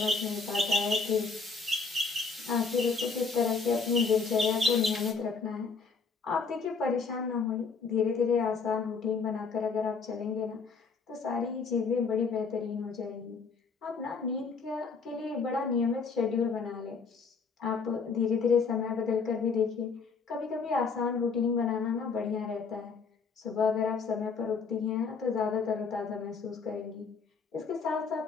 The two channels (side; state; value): right; quieter; 4.9 dB